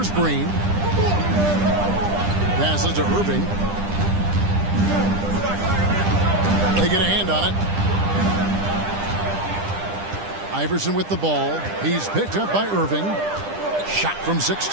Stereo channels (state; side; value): late; left; 10 ms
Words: Green. Passes to Irving. They get a hand on it. Iverson with the ball. He's picked up by Irving. Shot from